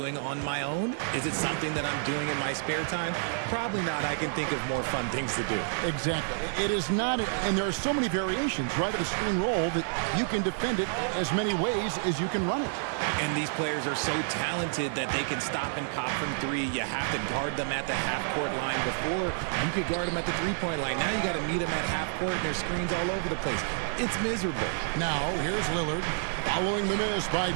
on my own? Is it something that I'm doing in my spare time? Probably not. I can think of more fun things to do. Exactly. It is not, and there are so many variations, right, of the screen roll that you can defend it as many ways as you can run it. And these players are so talented that they can stop and pop from 3. You have to guard them at the half-court line. Before, you could guard them at the 3-point line. Now you got to meet them at half-court, and there's screens all over the place. It's miserable. Now, here's Lillard, following the miss by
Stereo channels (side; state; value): left; silent; digital silence